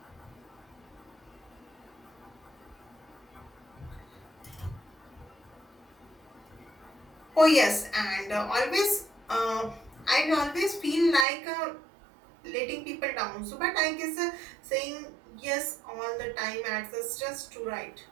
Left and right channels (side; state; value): left; drops out; at 11.2 s